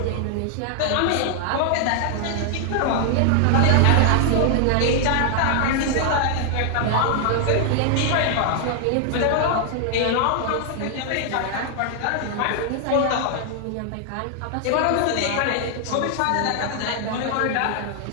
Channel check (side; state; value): both; different; correlation 0.00